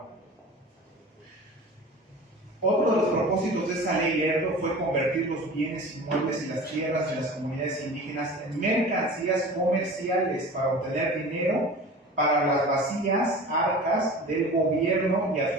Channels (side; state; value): both; normal; correlation 0.38